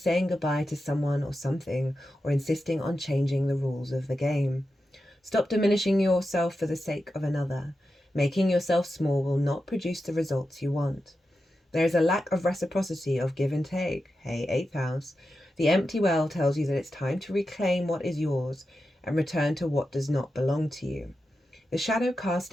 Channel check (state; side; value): normal; both; correlation 0.90